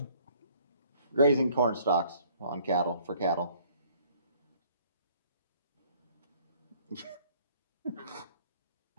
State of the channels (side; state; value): both; inverted; correlation -0.59